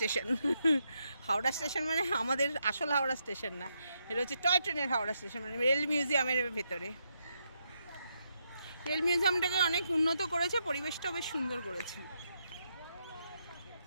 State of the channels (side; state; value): both; inverted; correlation -0.81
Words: হাওড়া স্টেশন মানে আমাদের আসল হাওড়া স্টেশন না, এটা হচ্ছে টয় ট্রেনের হাওড়া স্টেশন, মানে রেল মিউজিয়ামের ভেতরে। রেল মিউজিয়ামটাকে অনেক উন্নত করেছে, পরিবেশটাও বেশ সুন্দর করেছে।